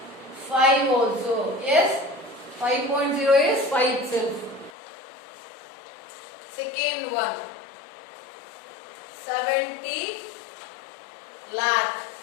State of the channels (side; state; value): right; drops out; at 4.7 s